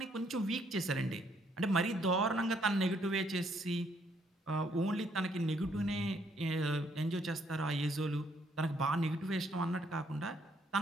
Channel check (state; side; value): normal; both; correlation 0.69